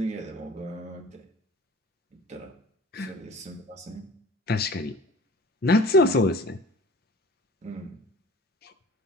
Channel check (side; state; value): both; normal; correlation 0.45